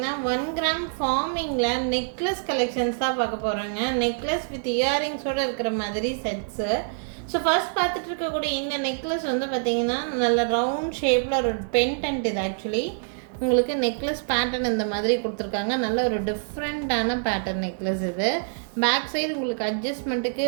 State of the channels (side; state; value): left; silent; digital silence